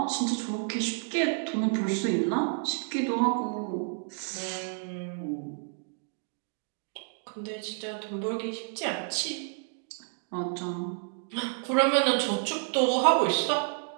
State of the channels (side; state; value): left; silent; 58 dB below the other